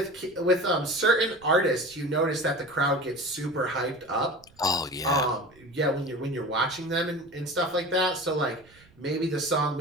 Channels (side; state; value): right; noise; rumble, 28 dB below the sound